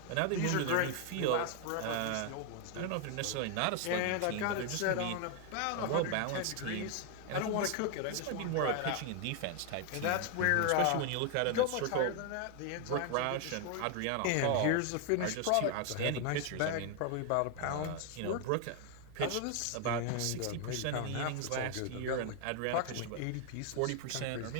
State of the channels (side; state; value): both; different; correlation 0.01